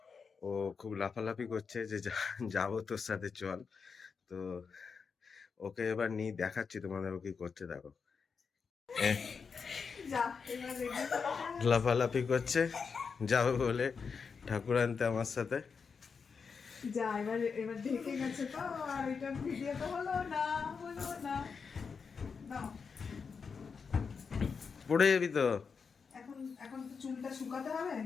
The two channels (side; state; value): right; quieter; 5.6 dB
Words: ও খুব লাফালাফি করছে যে যাবো তোর সাথে চল। তো ওকে এবার নিয়ে দেখাচ্ছি তোমাদের ও কি করছে দেখো। লাফালাফি করছে যাবে বলে ঠাকুর আনতে আমার সাথে। যা এবার এবার ঢেকে গেছে তো, আর এটা ভিডিও তো হলো না। নাও, পড়ে যাবি তো। এখন এখন তো চুলটা শুকাতে হবে,